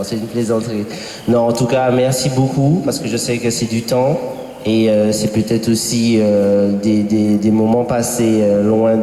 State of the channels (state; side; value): identical; both; correlation 1.00